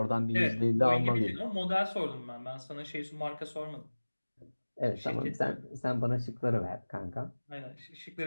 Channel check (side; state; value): both; inverted; correlation -1.00